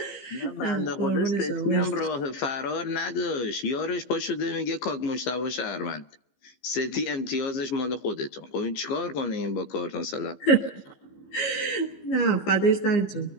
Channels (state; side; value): late; right; 15 ms